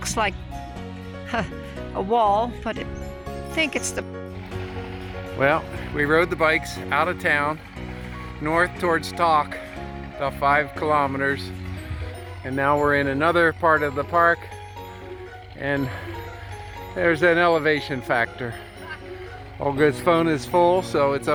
like a wall, but I think it's the... Well, we rode the bikes out of town, north towards Talk, about 5 kilometers, and now we're in another part of the park, and there's an elevation factor. Olga's phone is full, so it's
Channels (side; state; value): both; identical; correlation 1.00